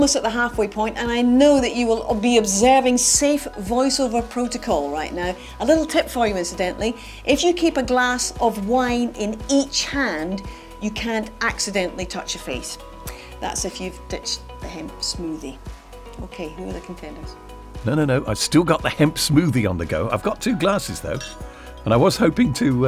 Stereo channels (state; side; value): identical; both; correlation 1.00